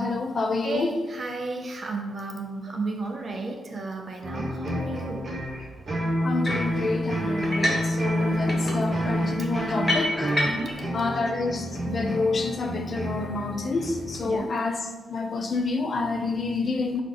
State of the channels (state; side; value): normal; both; correlation 0.83